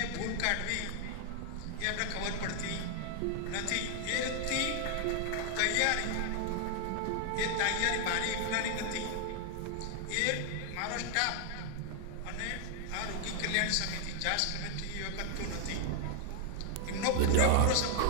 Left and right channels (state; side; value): different; both; correlation 0.00